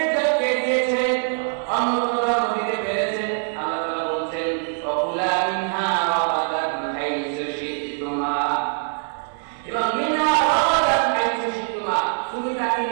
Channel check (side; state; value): left; silent; 59 dB below the other